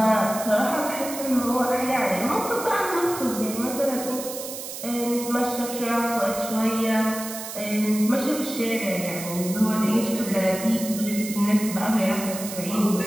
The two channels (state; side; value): noise; right; hiss, 9 dB below the sound